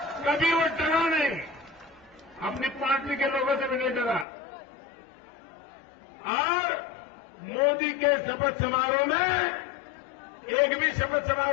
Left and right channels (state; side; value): drops out; right; at 4.2 s